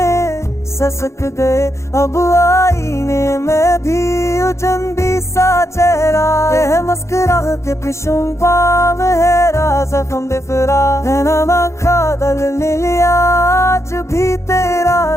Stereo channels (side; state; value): right; late; 0.14 ms